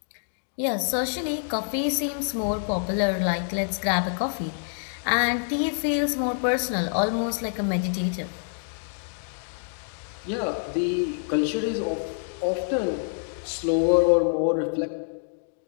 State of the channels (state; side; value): silent; right; digital silence